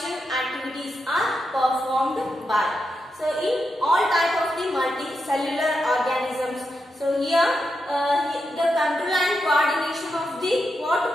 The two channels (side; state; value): both; normal; correlation 0.86